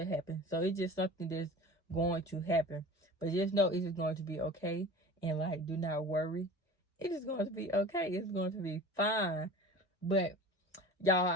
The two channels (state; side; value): normal; both; correlation 0.38